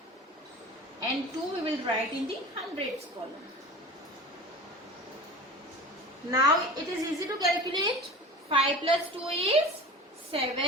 and 2 we will write in the hundreds column. Now it is easy to calculate. 5 plus 2 is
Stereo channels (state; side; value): normal; both; correlation 0.36